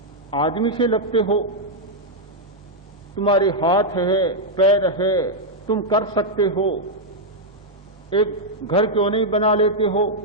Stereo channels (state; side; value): normal; both; correlation -0.03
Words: आदमी से लगते हो, तुम्हारे हाथ है, पैर है, तुम कर सकते हो। एक घर क्यों नहीं बना लेते हो